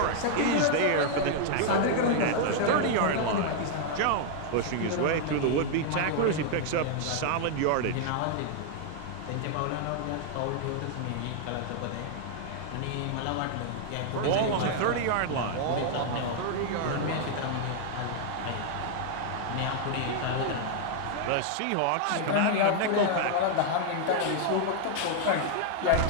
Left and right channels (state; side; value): different; both; correlation 0.00